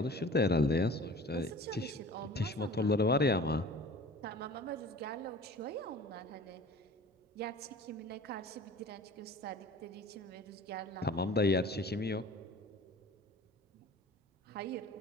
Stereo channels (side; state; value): both; normal; correlation 0.43